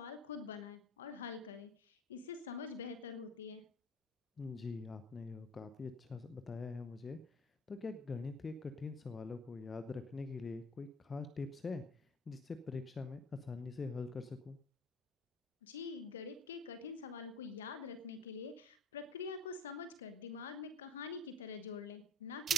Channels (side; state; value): both; normal; correlation 0.46